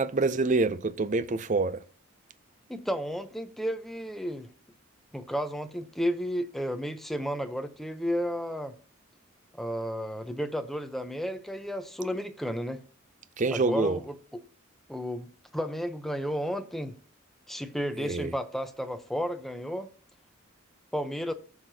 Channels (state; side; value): normal; both; correlation 0.64